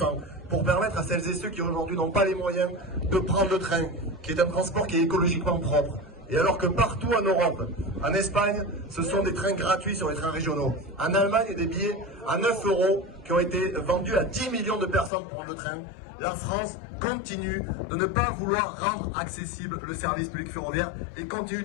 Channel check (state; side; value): drops out; right; at 15.1 s